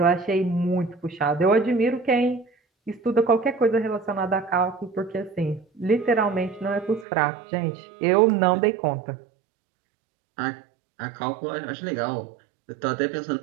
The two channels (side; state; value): left; drops out; at 7.1 s